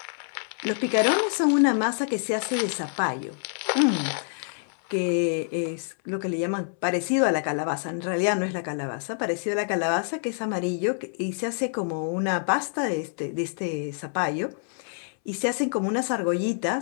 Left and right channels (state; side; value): silent; right; 60 dB below the other